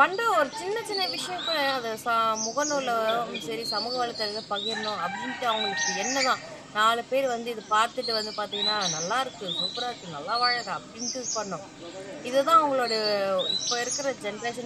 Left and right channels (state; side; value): identical; both; correlation 1.00